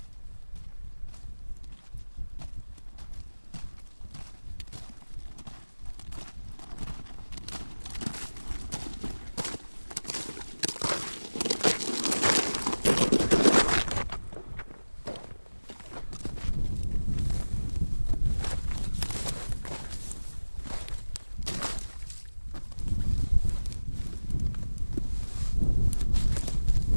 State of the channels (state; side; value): inverted; both; correlation -1.00